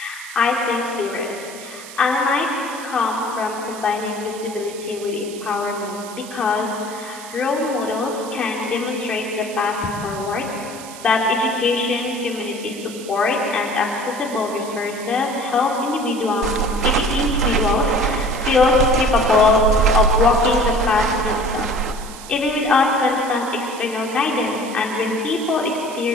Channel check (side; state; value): right; noise; hiss, 15 dB below the sound